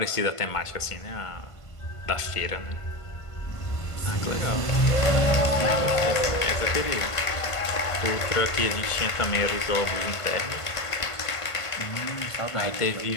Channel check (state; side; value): late; right; 1.5 ms